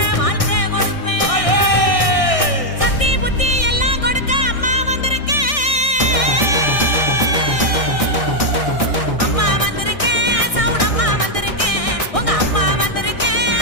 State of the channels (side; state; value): right; late; 1.6 ms